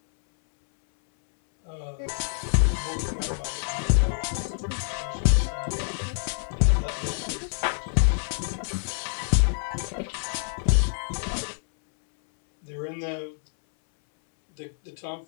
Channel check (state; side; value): silent; right; 60 dB below the other